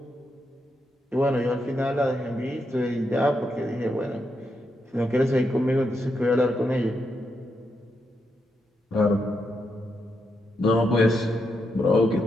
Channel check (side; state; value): both; normal; correlation 0.82